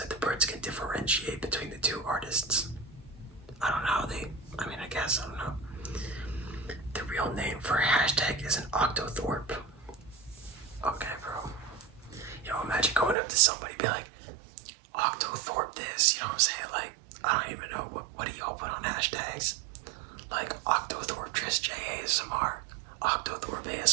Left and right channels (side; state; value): left; drops out; at 13.2 s